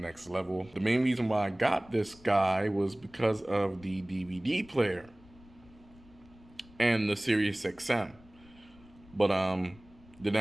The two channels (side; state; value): left; noise; rumble, 25 dB below the sound